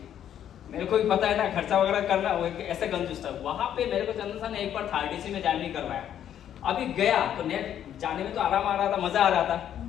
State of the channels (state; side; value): quieter; right; 10.2 dB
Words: मेरे को भी पता है ना खर्चा वगैरह करना, वो ऐसे कंजूस था। वहां पे मेरे को चंदन सर ने एक बार 30 में जर्नी करवाया, अभी गया तो नेट जाने में तो आराम आ रहा था, मजा आ रहा था।